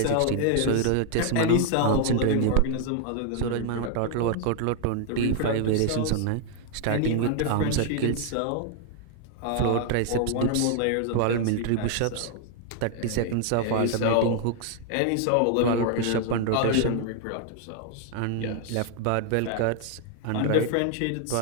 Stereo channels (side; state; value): both; different; correlation 0.00